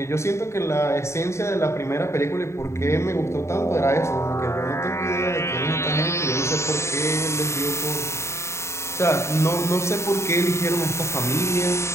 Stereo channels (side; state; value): right; late; 0.13 ms